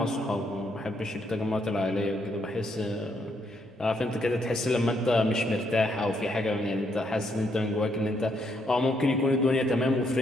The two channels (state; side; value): normal; both; correlation 0.74